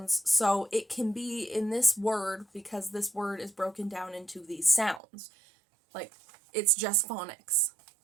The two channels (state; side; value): drops out; left; at 5.0 s